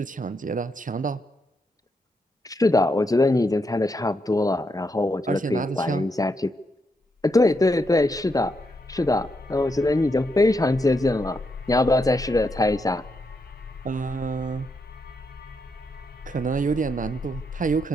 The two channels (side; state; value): both; normal; correlation 0.80